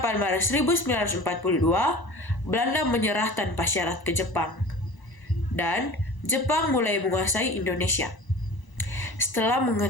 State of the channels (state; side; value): late; right; 1.0 ms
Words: Maret 1942, Belanda menyerah tanpa syarat ke Jepang. Dan Jepang mulai menguasai Indonesia. Setelah